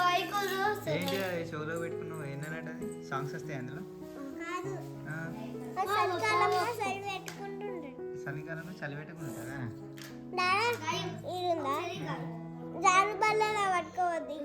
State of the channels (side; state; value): both; identical; correlation 1.00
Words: ఏంటి అది షోలో పెట్టుకున్నావు ఏంటన్నట్టు అది సాంగ్స్ వస్తాయి అందులో చలికాలంలో చలి పెట్టుకుంటుందా జారు బల్లలా పట్టుకోవద్దు